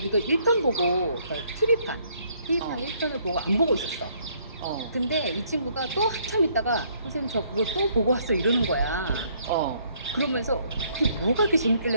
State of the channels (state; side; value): inverted; both; correlation -0.66